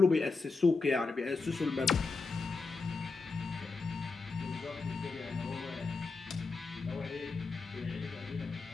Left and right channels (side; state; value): right; quieter; 4.2 dB